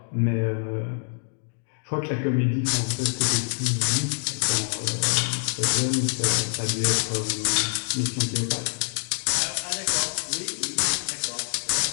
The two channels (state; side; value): silent; right; digital silence